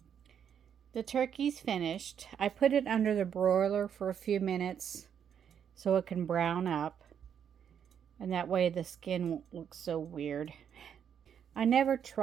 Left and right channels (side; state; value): left; quieter; 8.3 dB